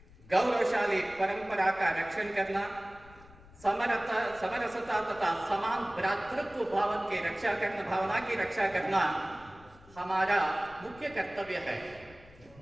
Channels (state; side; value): noise; left; rumble, 23 dB below the sound